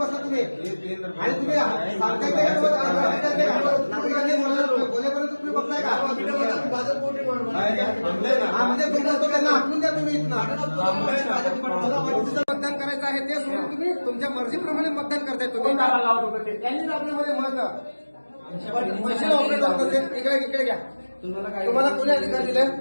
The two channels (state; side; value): inverted; both; correlation -1.00